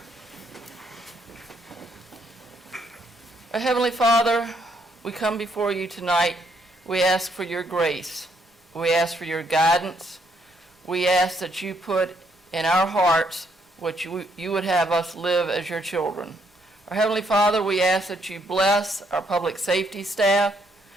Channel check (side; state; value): both; normal; correlation 0.72